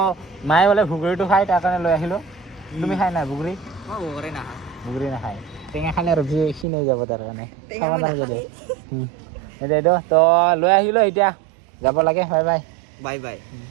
মায়ে বোলে ভুগুৰিটো খাই তাৰ কাৰণে লৈ আহিলোঁ তুমি খাই নাই বগৰী বগৰী নাখায় টেঙা খালে আৰু ক্ষীণ হৈ যাব তাৰ কাৰণে তো লৈ আহিলোঁ এতিয়া যাব লাগে bye bye bye bye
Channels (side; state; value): left; drops out; at 6.7 s